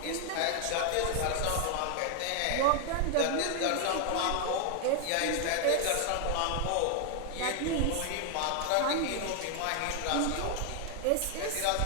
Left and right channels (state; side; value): different; both; correlation 0.00